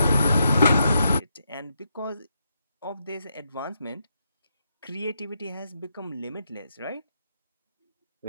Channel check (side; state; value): both; inverted; correlation -0.81